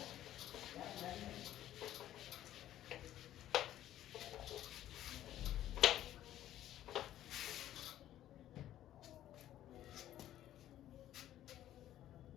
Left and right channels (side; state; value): right; quieter; 12.6 dB